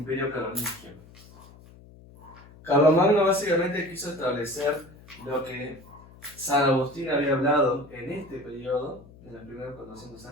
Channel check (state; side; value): noise; left; hum, 22 dB below the sound